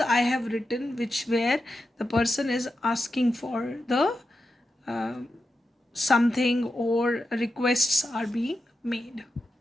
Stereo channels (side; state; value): both; normal; correlation 0.89